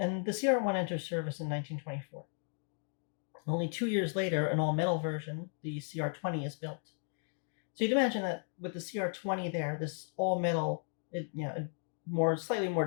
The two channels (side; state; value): right; silent; 54 dB below the other